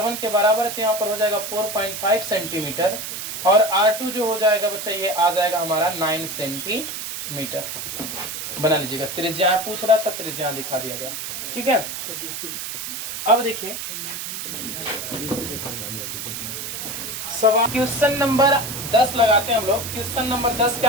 के बराबर है तो यहाँ पर हो जाएगा 4.5 सेंटीमीटर, और r2 जो हो जाएगा बच्चा ये आ जाएगा हमारा 9 सेंटीमीटर। बना लीजिएगा, त्रिज्या पूछ रहा था, त्रिज्या दिखा दिया गया, ठीक है। अब देखिए सवाल क्वेश्चन नंबर 10 लगाते हैं हम लोग। क्वेश्चन नंबर 10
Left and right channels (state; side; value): noise; right; hiss, 6 dB below the sound